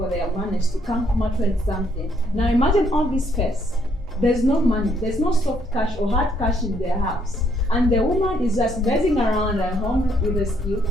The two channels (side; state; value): both; normal; correlation 0.70